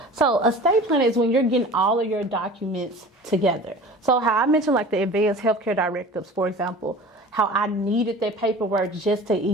So estate planning is when you're getting all of your documents together. So how I mentioned like the advanced healthcare directives, for example, how I needed that paperwork just to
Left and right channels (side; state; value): both; normal; correlation 0.40